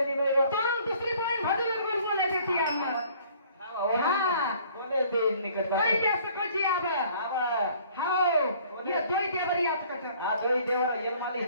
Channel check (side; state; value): both; inverted; correlation -0.56